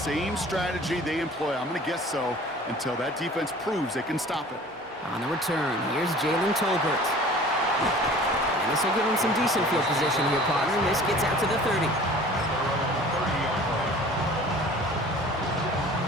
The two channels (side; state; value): both; normal; correlation 0.46